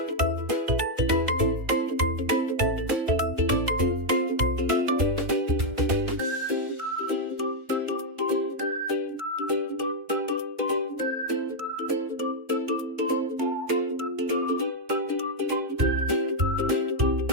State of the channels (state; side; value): late; left; 2.3 ms